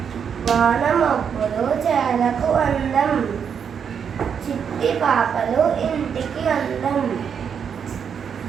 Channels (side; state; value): left; quieter; 7.3 dB